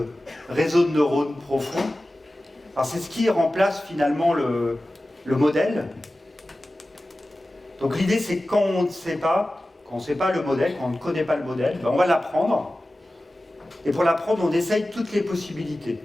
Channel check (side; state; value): both; normal; correlation 0.95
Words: réseau de neurones profond. Alors c'est ce qui remplace finalement le modèle. Donc l'idée c'est quand on ne sait pas, le modèle, quand on ne connaît pas le modèle, ben on va l'apprendre. Et pour l'apprendre, on essaye toutes les possibilités.